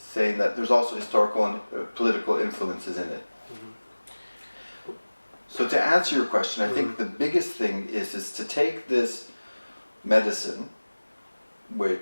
that there's also historical and political influences in it. Mm-hmm. So to answer your question, I think the biggest thing is to take this medicine,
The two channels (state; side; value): inverted; both; correlation -1.00